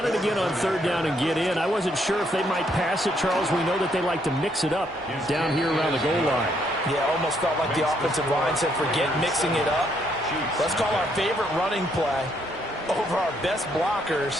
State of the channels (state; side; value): normal; both; correlation 0.72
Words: it again on 3rd down and get in. I wasn't sure if they might pass it, Charles. We know that they like to mix it up down here around the goal line. Yeah, almost felt like the offensive line said, forget mixing it up. Let's call our favorite running play over our best